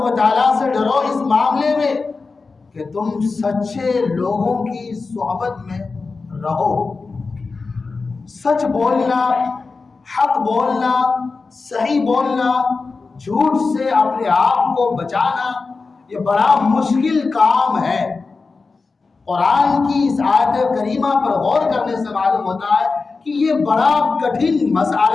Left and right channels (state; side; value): quieter; right; 4.2 dB